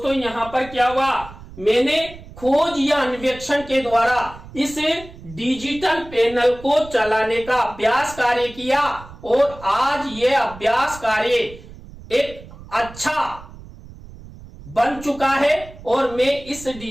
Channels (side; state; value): right; noise; rumble, 17 dB below the sound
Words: यहाँ पर क्या हुआ, मैंने खोज या अन्वेषण के द्वारा इस डिजिटल पैनल को चलाने का अभ्यास कार्य किया और आज ये अभ्यास कार्य एक अच्छा बन चुका है और मैं इस